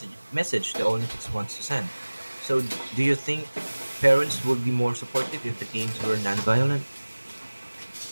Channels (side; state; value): both; inverted; correlation -1.00